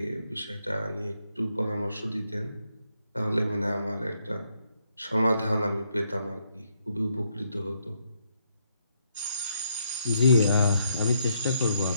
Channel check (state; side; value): inverted; both; correlation -0.75